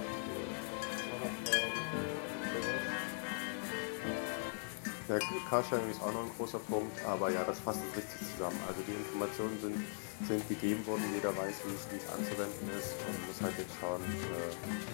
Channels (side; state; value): right; silent; digital silence